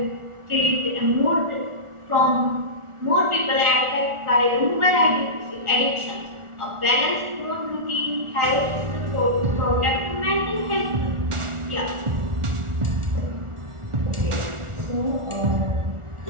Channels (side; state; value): left; late; 1.4 ms